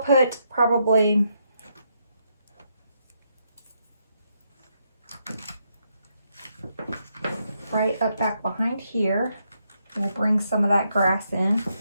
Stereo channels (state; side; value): inverted; both; correlation -0.78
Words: probably right up back behind here. We'll bring some of that grass in,